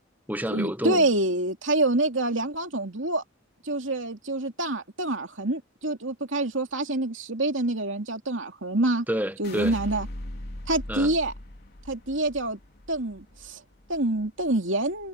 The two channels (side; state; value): both; normal; correlation 0.05